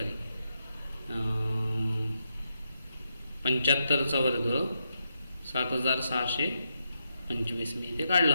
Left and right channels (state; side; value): inverted; both; correlation -0.83